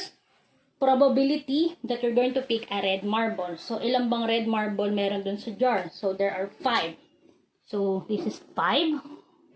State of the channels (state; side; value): identical; both; correlation 1.00